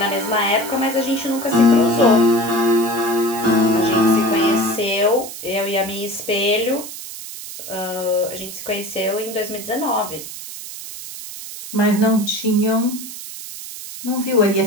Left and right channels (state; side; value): noise; right; hiss, 11 dB below the sound